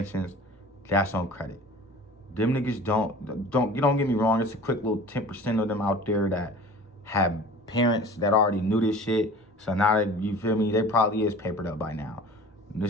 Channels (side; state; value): both; normal; correlation 0.42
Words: that's on credit. Them niggas don't get me wrong, it's a quick little 10% of them out there that have parents that already knew this shit. So now that, you feel me, they probably is papered up by now.